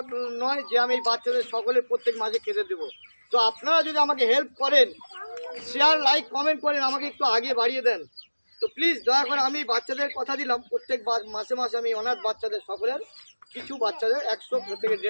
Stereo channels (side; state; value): both; inverted; correlation -1.00